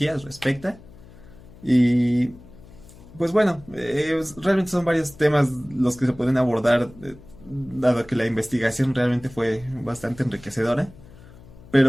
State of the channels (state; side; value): noise; left; hum, 21 dB below the sound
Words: respecta. Y pues bueno, realmente son varios temas los que se pueden abordar, dado que la investigación realmente fue bastante enriquecedora.